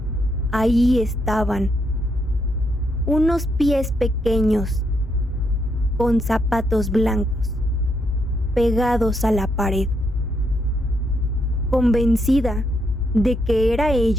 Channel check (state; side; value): normal; both; correlation 0.77